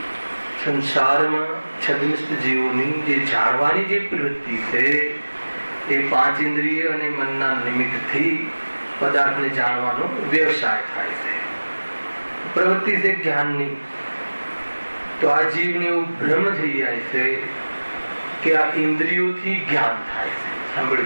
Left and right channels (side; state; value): both; inverted; correlation -1.00